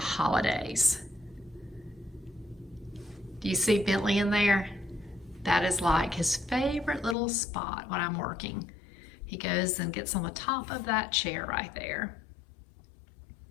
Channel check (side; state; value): right; drops out; at 7.2 s